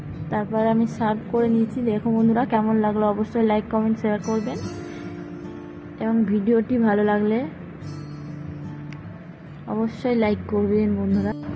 তারপর আমি সার্ভ করে নিয়েছি। দেখো বন্ধুরা, কেমন লাগলো অবশ্যই লাইক কমেন্ট শেয়ার করবেন, এবং ভিডিওটি ভালো লাগলে অবশ্যই লাইক করবেন বন্ধুরা।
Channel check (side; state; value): both; identical; correlation 1.00